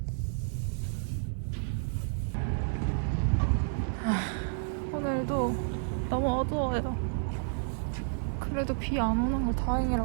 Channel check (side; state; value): left; silent; 57 dB below the other